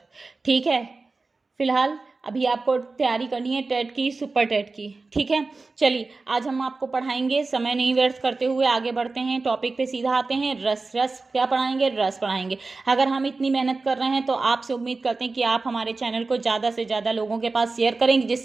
ठीक है। फिलहाल अभी आपको तैयारी करनी है टेट की, सुपर टेट की। ठीक है। चलिए, आज हम आपको पढ़ाएंगे। समय नहीं व्यर्थ करते हुए आगे बढ़ते हैं, टॉपिक पे सीधा आते हैं। रस रस क्या पढ़ाएंगे? रस पढ़ाएंगे। अगर हम इतनी मेहनत कर रहे हैं तो आपसे उम्मीद करते हैं कि आप हमारे चैनल को ज़्यादा से ज़्यादा लोगों के पास शेयर करेंगे,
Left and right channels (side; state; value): left; quieter; 3.8 dB